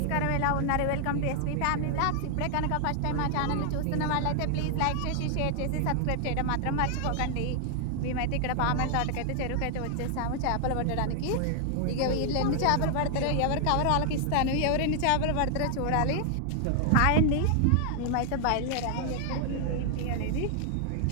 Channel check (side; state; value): both; different; correlation 0.00